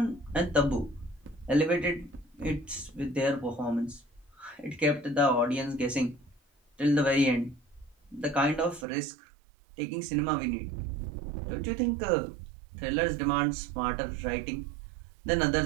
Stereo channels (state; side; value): drops out; left; at 8.8 s